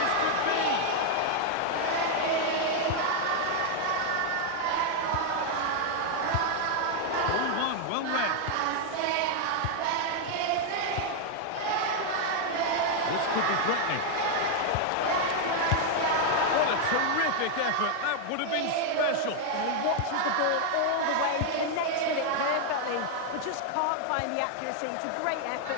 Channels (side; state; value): both; different; correlation 0.00